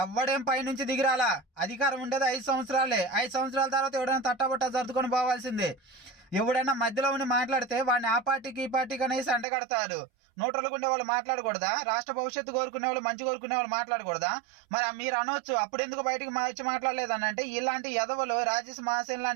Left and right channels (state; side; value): drops out; left; at 9.5 s